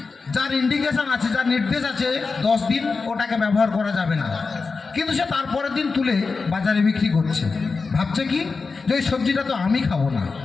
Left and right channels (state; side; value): quieter; right; 4.4 dB